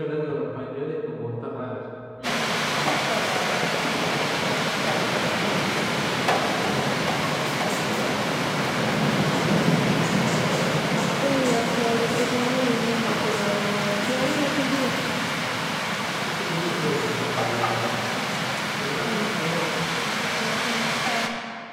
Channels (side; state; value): both; identical; correlation 1.00